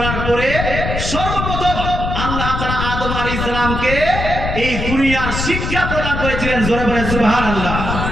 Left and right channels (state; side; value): noise; left; rumble, 3 dB below the sound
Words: পরে সর্বপ্রথম আল্লাহ তাআলা আদম আলাইহিস সালামকে এই দুনিয়ার শিক্ষা প্রদান করেছিলেন। জোরে বলেন সুবহানাল্লাহ।